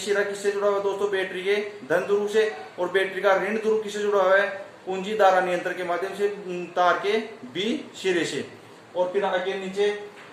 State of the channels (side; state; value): both; identical; correlation 1.00